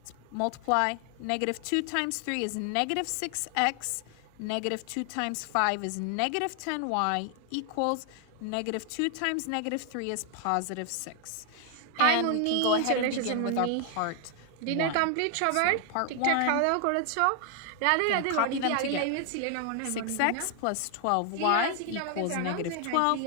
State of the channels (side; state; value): both; different; correlation 0.00